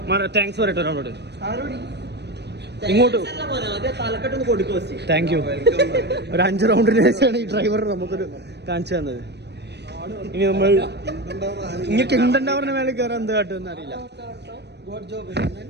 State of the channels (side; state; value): left; late; 0.49 ms